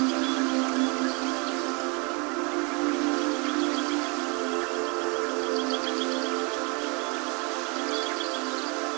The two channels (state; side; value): quieter; left; 31.4 dB